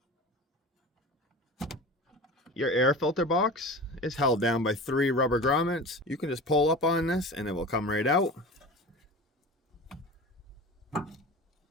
Your air filter box is held down by 3 rubber grommets. You can just pull up on this and it will come right out.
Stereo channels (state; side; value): normal; both; correlation 0.33